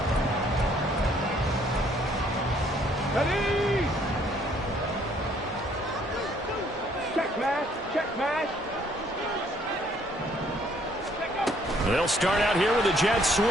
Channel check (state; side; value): normal; both; correlation 0.64